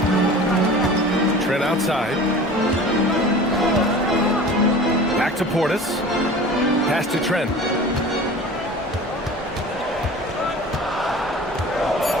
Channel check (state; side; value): normal; both; correlation 0.40